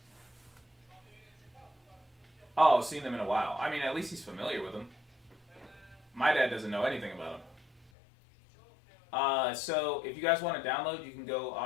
Oh, seen them in a while. I mean, at least he's familiar with them. My dad doesn't know anything about them. So if you guys want to download, you can go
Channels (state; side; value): drops out; right; at 7.9 s